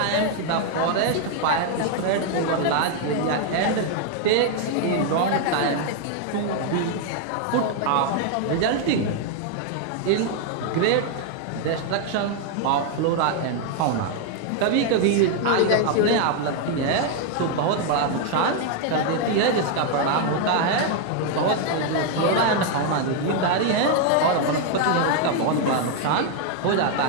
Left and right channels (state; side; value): different; both; correlation 0.00